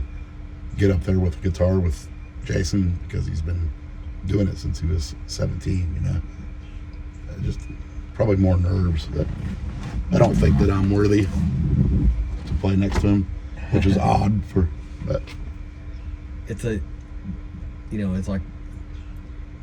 get up there with a guitar with Jason because he's been doing it since he was 17. Just probably more nerves that I don't think that I'm worthy to play next to him, which is odd but it's like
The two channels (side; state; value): both; identical; correlation 1.00